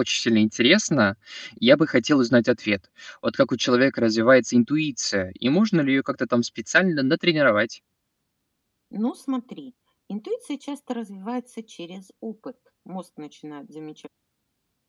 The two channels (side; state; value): both; identical; correlation 1.00